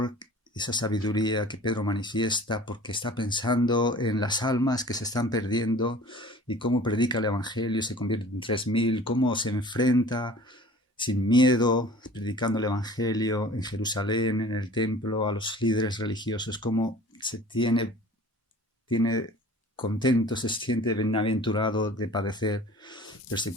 esa sabiduría que Pedro manifiesta porque está pensando en las almas que se están perdiendo y cómo predica el Evangelio y se convierte en 3.000, cómo se enfrenta sin miedo, predicando el Evangelio en Jerusalén, en el templo, a los líderes religiosos, cómo se tiene contento, se siente bienaventurado de padecer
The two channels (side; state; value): both; normal; correlation 0.45